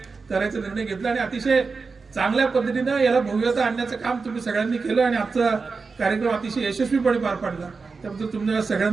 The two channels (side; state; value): left; quieter; 4.5 dB